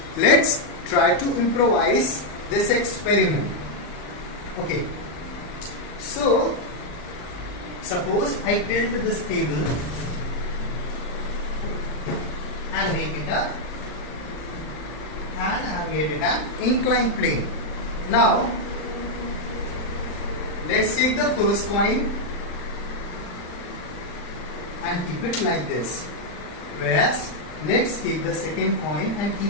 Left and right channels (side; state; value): right; late; 39 ms